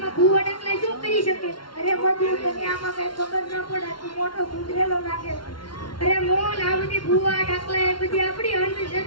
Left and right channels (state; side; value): late; right; 0.72 ms